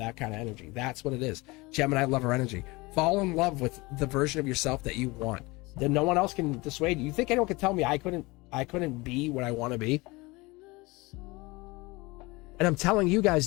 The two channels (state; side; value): quieter; right; 23.4 dB